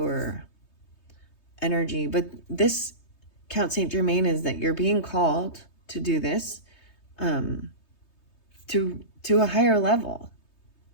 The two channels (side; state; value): right; late; 3.2 ms